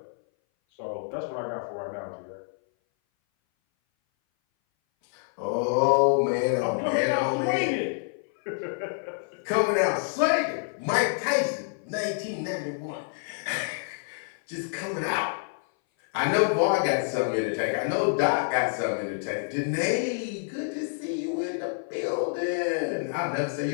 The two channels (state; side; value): silent; right; 58 dB below the other